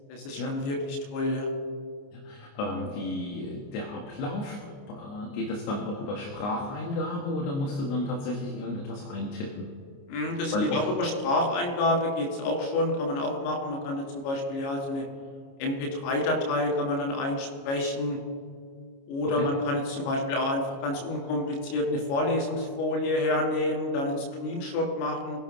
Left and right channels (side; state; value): right; late; 29 ms